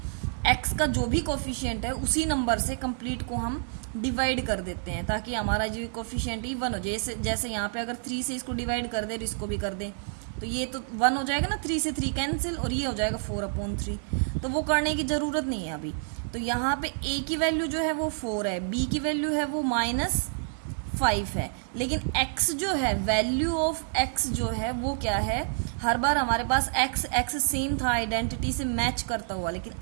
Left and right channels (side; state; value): left; silent; digital silence